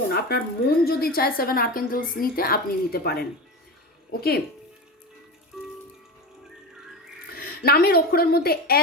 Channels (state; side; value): normal; both; correlation 0.24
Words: আপনার মন যদি চায় 7 আর্কএঞ্জেলস নিতে, আপনি নিতে পারেন। ওকে, নামের অক্ষরের মধ্যে